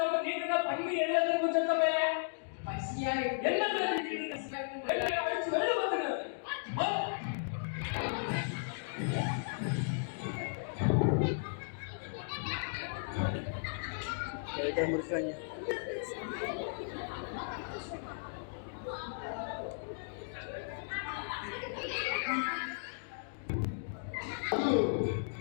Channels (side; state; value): right; silent; digital silence